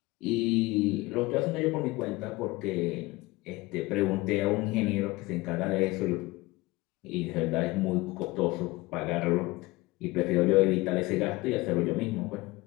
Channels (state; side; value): quieter; right; 21.3 dB